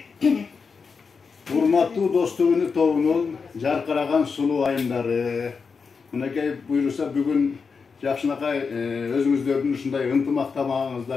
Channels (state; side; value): quieter; right; 5.3 dB